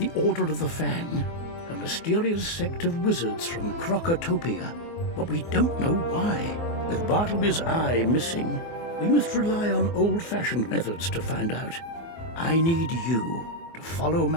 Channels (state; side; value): late; right; 24 ms